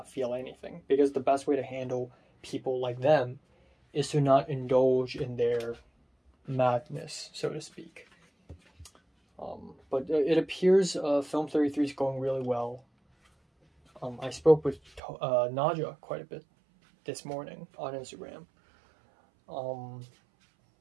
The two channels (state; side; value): drops out; left; at 15.0 s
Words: feel anything, because the best way to handle people like them is to not indulge in their madness, so to speak. But it appears Film 33 is going really well. I spoke with Naja quite a bit this morning on Instagram. So